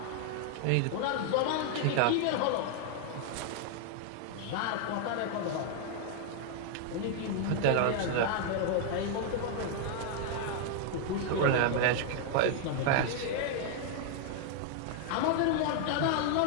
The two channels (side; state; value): both; different; correlation 0.00